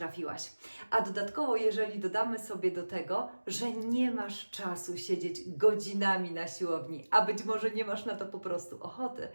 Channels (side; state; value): both; inverted; correlation -1.00